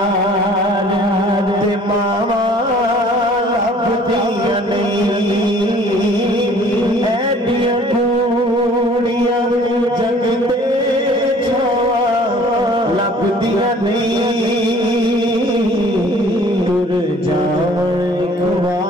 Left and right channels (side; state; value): both; normal; correlation 0.53